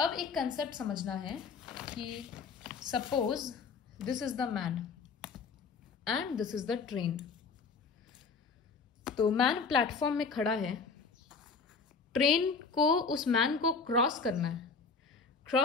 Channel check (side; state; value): right; quieter; 4.9 dB